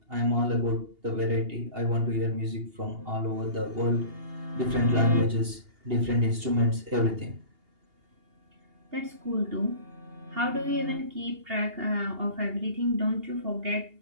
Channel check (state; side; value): late; left; 2.8 ms